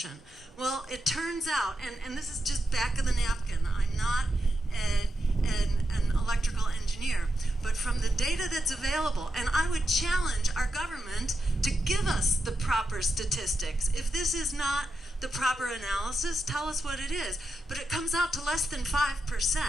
Well, it turns out, and this is just back of the napkin, I'm not an electrical engineer, but from the data that's available, and I would challenge our government to give us the proper statistics. If this is not the proper analysis, tell us what it is. But it comes out to less than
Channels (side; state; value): both; normal; correlation 0.87